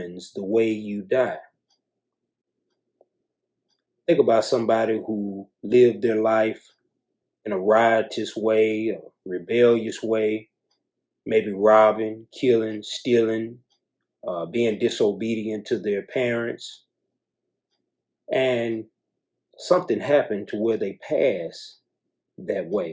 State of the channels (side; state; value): both; identical; correlation 1.00